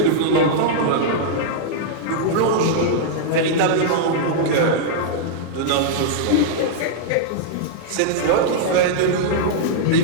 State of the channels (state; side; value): different; both; correlation -0.01